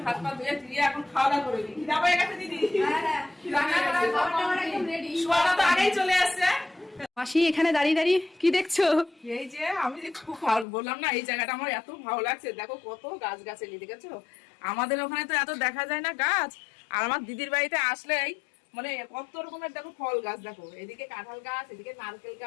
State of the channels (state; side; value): drops out; right; at 10.7 s